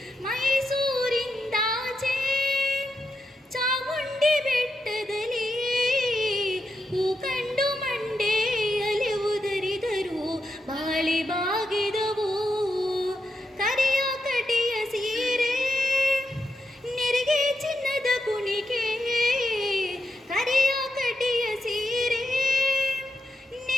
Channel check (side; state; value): both; normal; correlation 0.85